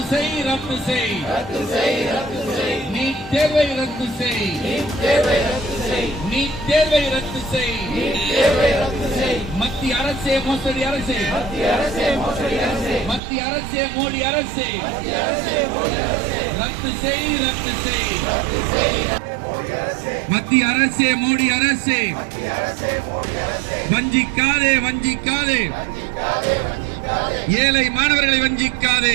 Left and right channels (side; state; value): left; drops out; at 13.2 s